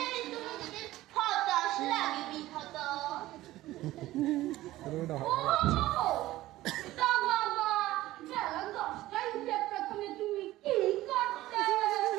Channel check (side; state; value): left; quieter; 16.3 dB